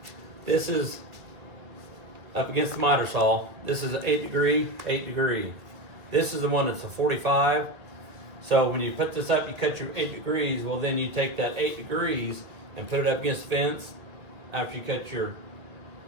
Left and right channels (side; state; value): left; late; 1.8 ms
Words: this is up against the miter saw. This is an 8 degree. This is the one that's a 45. So when you put this up, you cut your 8 degrees. Well, then you take that 8 degrees and put it up against the fence after you cut your